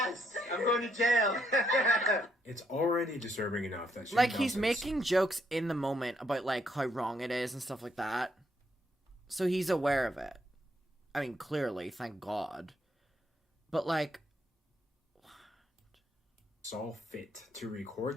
I'm going to jail. It's already disturbing enough that Shane Like, he's Dawson's- making jokes in the moment about, like, how wrong it is and stuff like that. So he's aware of it. I mean, clearly, thank God. But, like... saw fit to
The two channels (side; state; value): both; normal; correlation 0.74